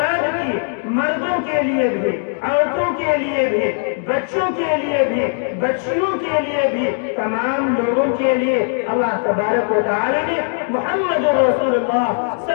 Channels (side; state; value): right; silent; 67 dB below the other